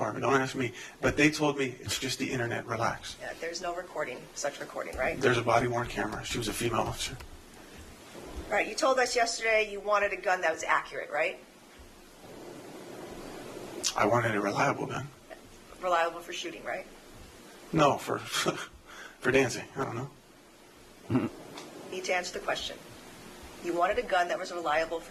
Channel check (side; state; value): both; identical; correlation 1.00